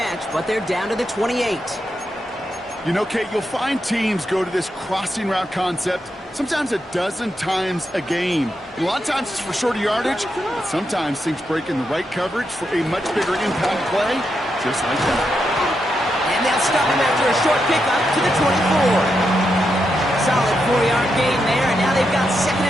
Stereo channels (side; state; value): both; normal; correlation 0.84